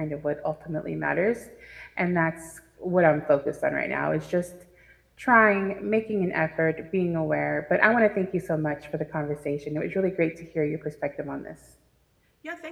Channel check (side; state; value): both; identical; correlation 1.00